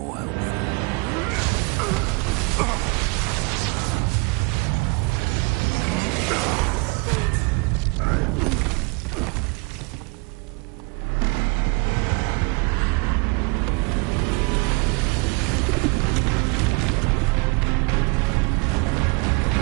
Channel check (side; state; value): left; quieter; 29.9 dB